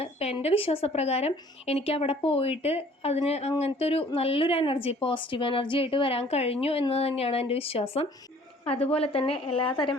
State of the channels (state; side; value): normal; both; correlation 0.54